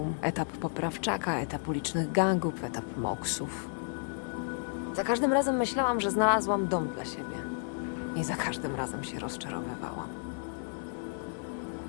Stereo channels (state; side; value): silent; right; 55 dB below the other